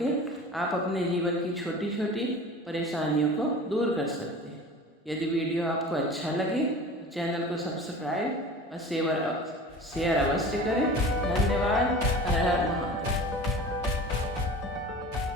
आप अपने जीवन की छोटी छोटी परेशानियों को दूर कर सकते हैं। यदि वीडियो आपको अच्छा लगे तो चैनल को सब्सक्राइब और शेयर अवश्य करें। धन्यवाद। हर हर महादेव।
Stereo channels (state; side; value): normal; both; correlation 0.39